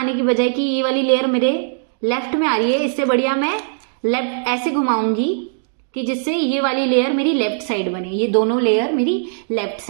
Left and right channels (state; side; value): silent; left; digital silence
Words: की बजाय कि ये वाली लेयर मेरे लेफ्ट में आ रही है, इससे बढ़िया मैं लेफ्ट ऐसे घुमाऊंगी कि जिससे ये वाली लेयर मेरी लेफ्ट साइड बने, ये दोनों लेयर मेरी लेफ्ट